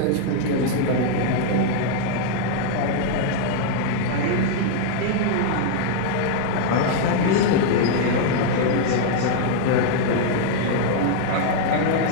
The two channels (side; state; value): both; different; correlation 0.00